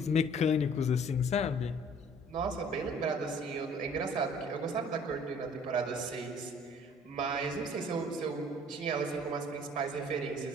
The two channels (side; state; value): both; normal; correlation 0.54